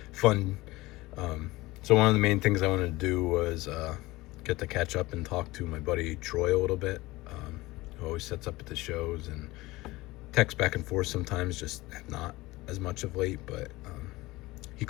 fun. So one of the main things I wanted to do was get to catch up and talk to my buddy Troy a little bit, who always sets up at the shows and texts back and forth sometimes, just not as much of late, but he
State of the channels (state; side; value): quieter; right; 20.1 dB